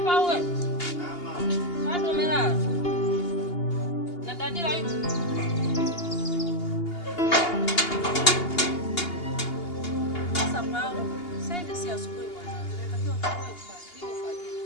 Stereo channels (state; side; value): late; right; 2.8 ms